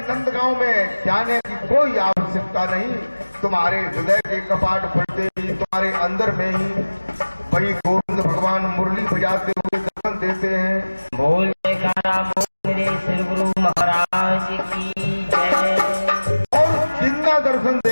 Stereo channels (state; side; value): inverted; both; correlation -1.00